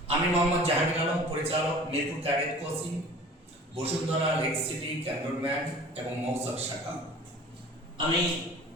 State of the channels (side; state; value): both; normal; correlation 0.45